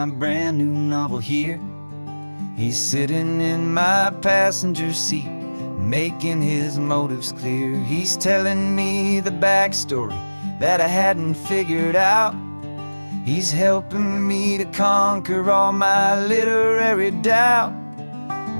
brand new novel here. He's sitting in my passenger seat, making his motives clear. He's telling me the backstory that I hadn't figured out. He's helping me to conquer all my literary doubt.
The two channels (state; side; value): inverted; both; correlation -1.00